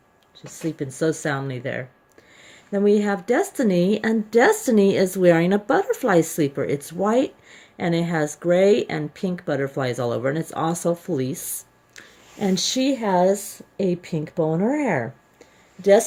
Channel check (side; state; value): both; identical; correlation 1.00